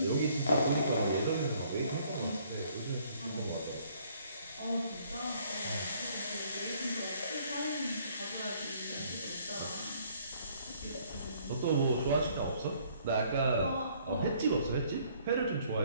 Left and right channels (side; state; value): both; inverted; correlation -0.63